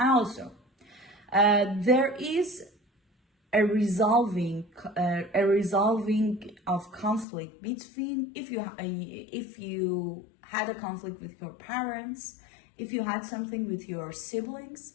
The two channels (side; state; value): right; drops out; at 7.2 s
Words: also, there is a resolving of conflict between, if you had a conflict with your parents, if you had something with your